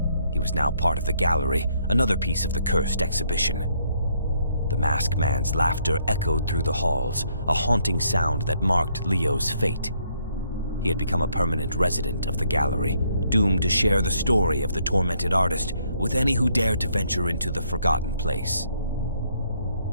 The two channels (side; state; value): both; inverted; correlation -0.70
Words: He was now part of the gallery, another piece of the cursed exhibition. The Masked Man's laughter echoed through the halls, a haunting sound that marked Leo's fate. He had become a permanent resident of the gallery, doomed to share the story of the tormented artist with any who dared to venture into the forgotten place.